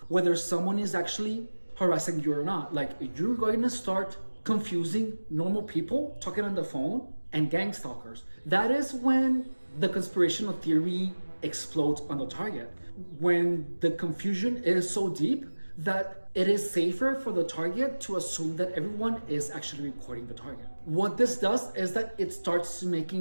whether someone is actually harassing you or not. Like you're going to start confusing normal people talking on the phone and gang stalkers. That is when the conspirational theory explodes on the target. When the confusion is so deep that it is safer for the target to assume that everyone is actually recording the target. What this does is that it starts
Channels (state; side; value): inverted; both; correlation -1.00